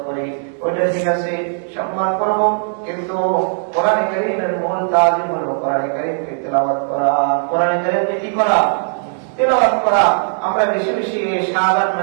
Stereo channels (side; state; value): left; silent; digital silence